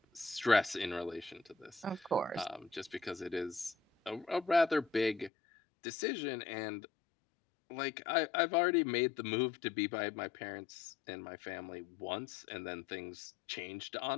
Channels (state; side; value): drops out; right; at 5.3 s